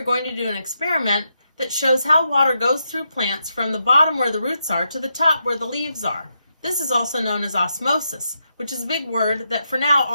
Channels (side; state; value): both; inverted; correlation -0.83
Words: going to do an experiment that shows how water goes through plants from the bottom where the roots are to the top where the leaves are. This is also known as osmosis, which is a big word that for now